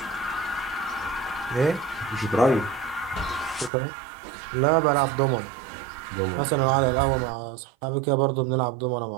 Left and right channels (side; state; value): left; drops out; at 3.7 s